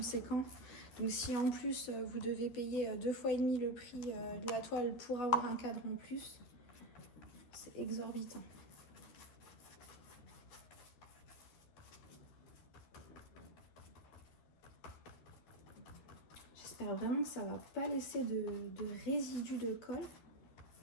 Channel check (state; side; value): late; right; 12 ms